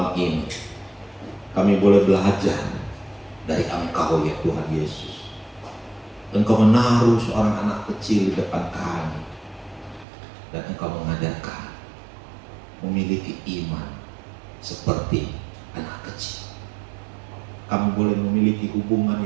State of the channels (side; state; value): left; drops out; at 10.1 s